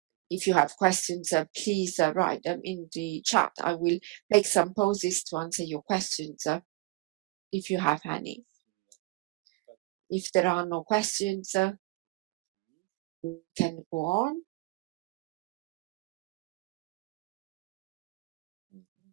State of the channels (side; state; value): left; quieter; 22.7 dB